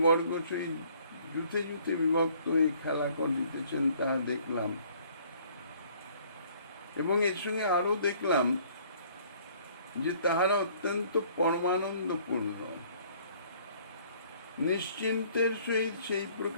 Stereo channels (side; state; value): both; inverted; correlation -0.58